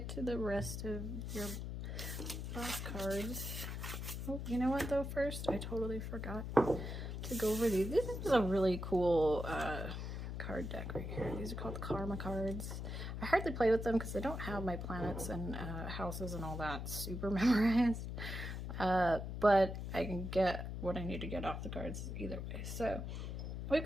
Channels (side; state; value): left; noise; hum, 5 dB below the sound